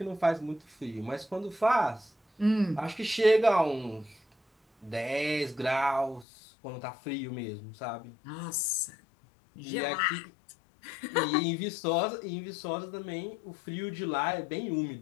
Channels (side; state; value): right; drops out; at 6.2 s